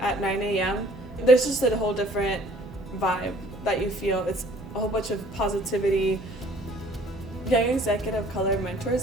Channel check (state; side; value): normal; both; correlation 0.55